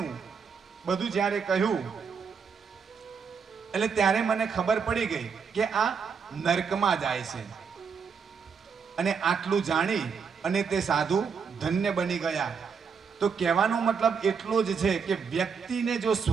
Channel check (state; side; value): quieter; left; 6.0 dB